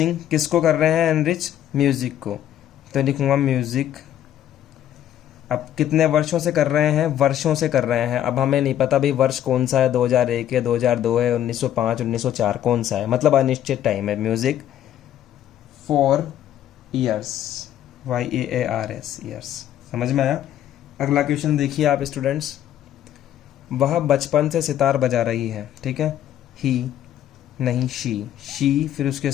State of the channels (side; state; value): right; quieter; 11.3 dB